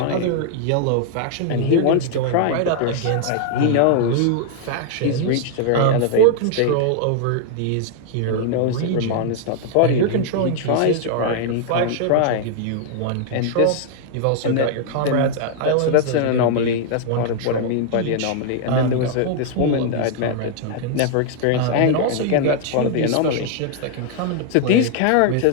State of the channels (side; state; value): both; different; correlation 0.00